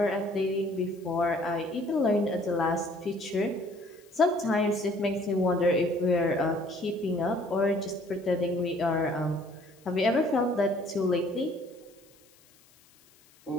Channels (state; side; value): noise; left; hiss, 29 dB below the sound